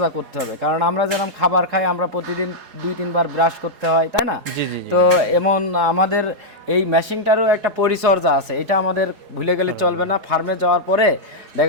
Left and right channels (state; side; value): late; left; 4.8 ms